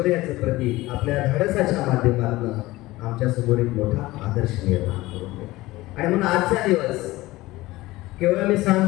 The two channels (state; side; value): quieter; right; 18.8 dB